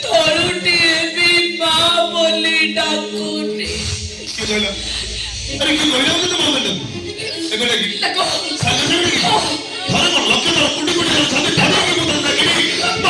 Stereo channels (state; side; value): identical; both; correlation 1.00